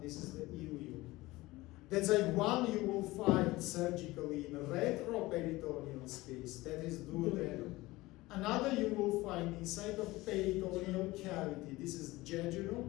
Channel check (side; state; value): right; quieter; 19.7 dB